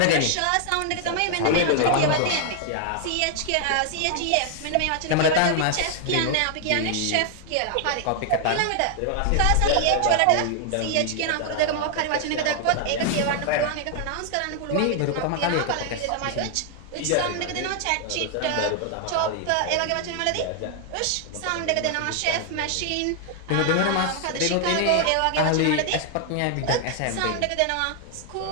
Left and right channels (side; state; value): both; different; correlation 0.00